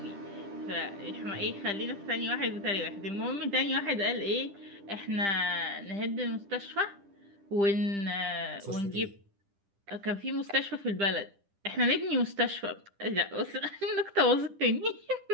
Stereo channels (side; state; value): left; late; 10 ms